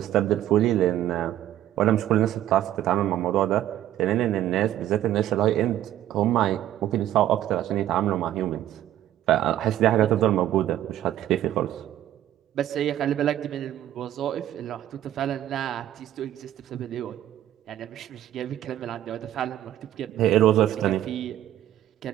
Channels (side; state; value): left; quieter; 12.5 dB